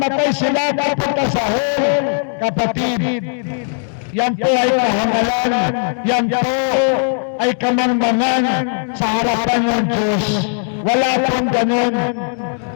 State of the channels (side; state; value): right; silent; digital silence